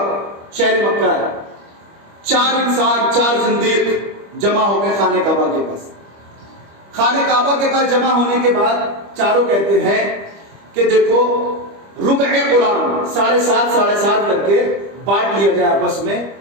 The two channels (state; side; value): late; left; 25 ms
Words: شہر مکہ ہے، 4 انسان، 4 زندیق جمع ہو گئے خانہ کعبہ کے پاس۔ خانہ کعبہ کے پاس جمع ہونے کے بعد چاروں کہتے ہیں کہ دیکھو ربع قرآن 7.5 کر کے بانٹ لیا جائے آپس میں،